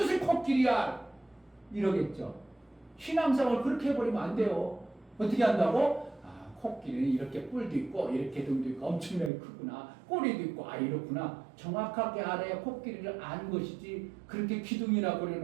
코끼리야? 이러겠죠. 신앙생활 그렇게 해버리면 안 돼요. 어떻게 한다고? 아, 코끼리는 이렇게 뿔도 있고 이렇게 등도 있고 엄청나게 크구나. 꼬리도 있고 아 이렇구나. 정확하게 알아야 코끼리를 아는 것이지 그렇게 기둥이나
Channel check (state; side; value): drops out; left; at 9.3 s